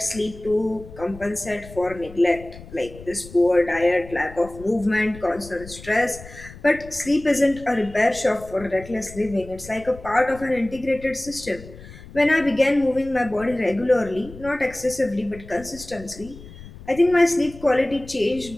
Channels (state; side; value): noise; left; rumble, 17 dB below the sound